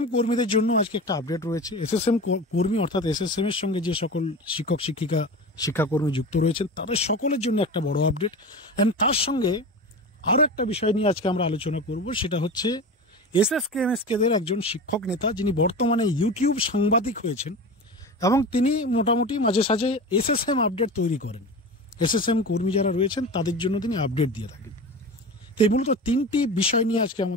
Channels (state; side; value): normal; both; correlation 0.29